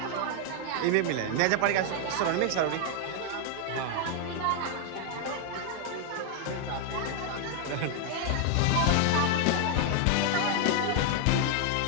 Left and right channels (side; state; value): both; different; correlation 0.00